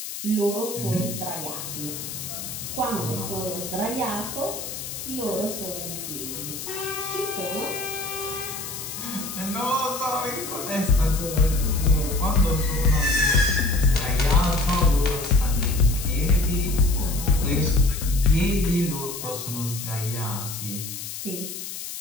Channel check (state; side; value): noise; left; hiss, 8 dB below the sound